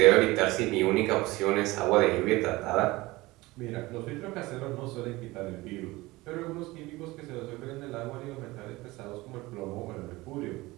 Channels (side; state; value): left; quieter; 20.5 dB